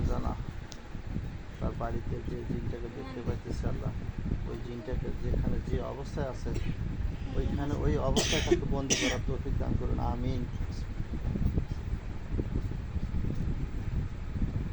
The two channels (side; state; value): both; identical; correlation 1.00